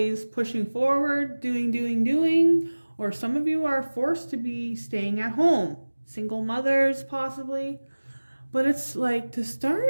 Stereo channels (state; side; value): inverted; both; correlation -1.00